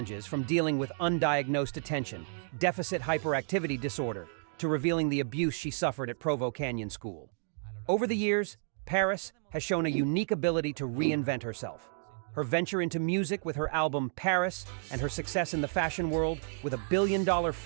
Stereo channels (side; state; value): left; silent; digital silence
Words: from dealing with undiagnosed attention deficit hyperactivity disorder to revealing the abuse she suffered at Provo Canyon School. Over the years, Paris has shown a unique ability to reinvent herself. Her venture into music with her album Paris and her success in the fashion world with a billion-dollar